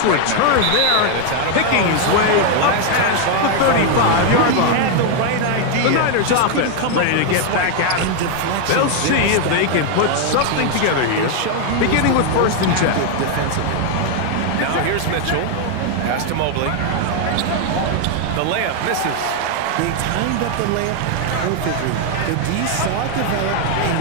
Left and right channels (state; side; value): different; both; correlation 0.01